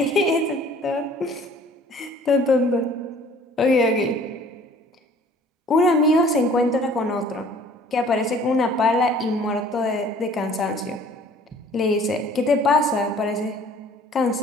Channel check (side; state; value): both; normal; correlation 0.52